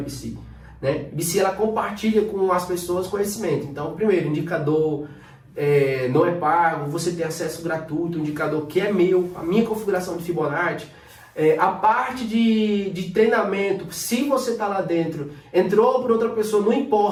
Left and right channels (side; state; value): both; identical; correlation 1.00